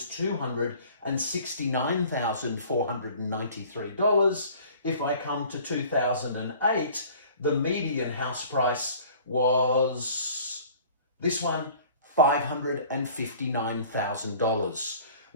$269,493. If I come to 2008, the median house price was, this one, $559,000.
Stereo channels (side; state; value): both; inverted; correlation -0.48